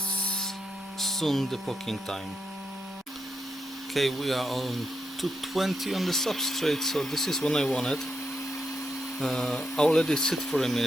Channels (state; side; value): normal; both; correlation 0.82